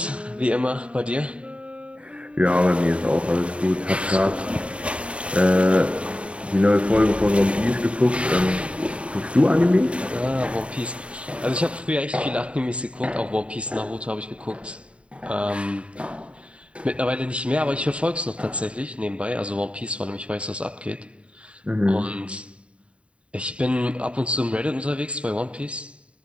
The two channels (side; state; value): left; late; 0.060 ms